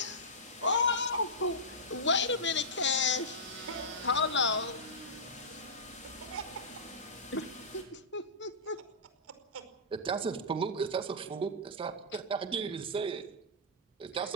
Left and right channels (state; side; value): normal; both; correlation -0.15